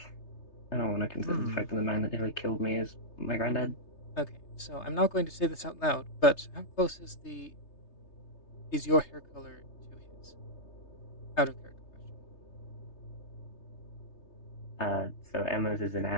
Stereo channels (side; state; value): right; late; 3.3 ms